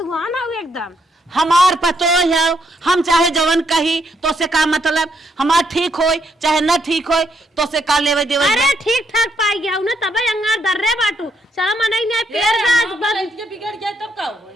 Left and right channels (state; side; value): normal; both; correlation 0.75